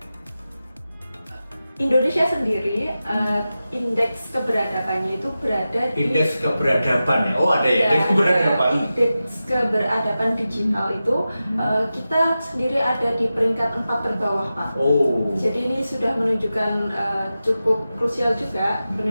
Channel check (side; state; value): both; inverted; correlation -0.93